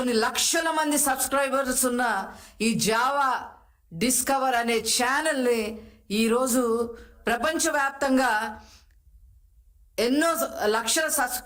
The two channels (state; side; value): identical; both; correlation 1.00